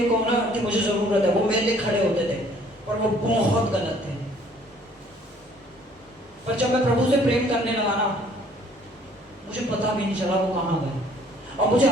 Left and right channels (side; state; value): both; normal; correlation 0.58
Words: कहूँ ना कि मुझे जरूरत है, वो मेरे लिए खड़े होते थे, पर वो बहुत गलत थे। पर जब मैं प्रभु से प्रेम करने लगा ना, मुझे पता भी नहीं चला वो कहाँ गए, और मुझे